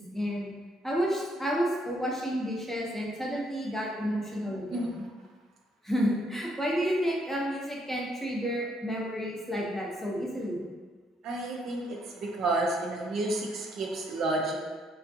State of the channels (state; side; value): normal; both; correlation 0.72